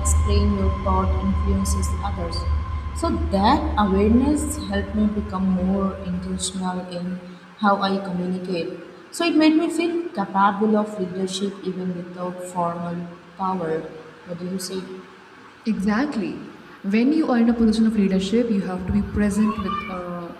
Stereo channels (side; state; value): both; identical; correlation 1.00